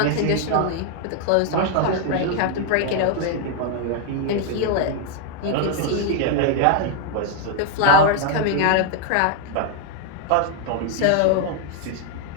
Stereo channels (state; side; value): different; both; correlation 0.00